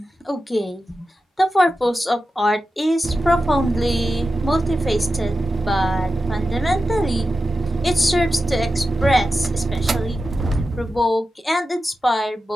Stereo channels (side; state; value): both; normal; correlation 0.91